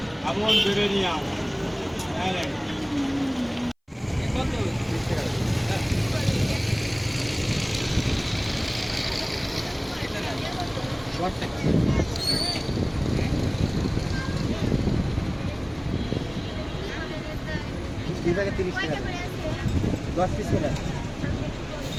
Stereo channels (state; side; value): identical; both; correlation 1.00